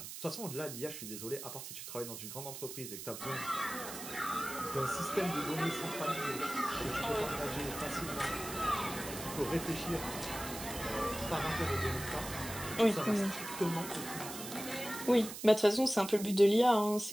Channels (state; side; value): noise; right; hiss, 9 dB below the sound